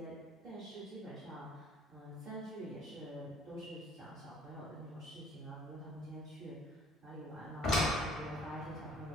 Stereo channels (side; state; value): both; normal; correlation 0.56